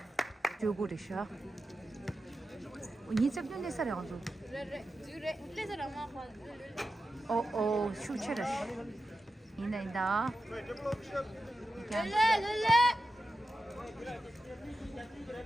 주고리샤. 니 cep년 내 살이 가지고. 슈체르. 인다.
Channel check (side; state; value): both; normal; correlation 0.91